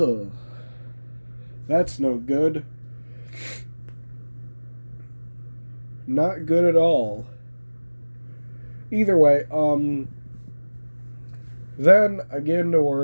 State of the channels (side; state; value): both; inverted; correlation -1.00